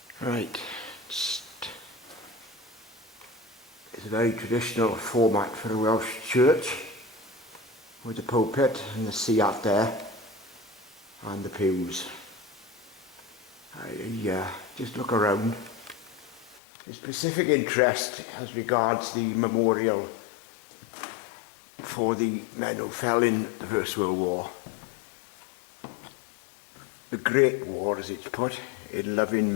Right, it's a very traditional format for a Welsh church, with the pulpit and the sea out there and the pews. I just look around. There's specific interest as regards the memorial for the men who fell in the First World War. The Great War, as it's put, in loving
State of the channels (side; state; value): right; drops out; at 16.6 s